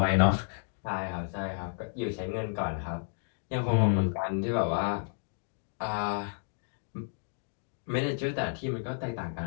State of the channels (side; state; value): right; silent; digital silence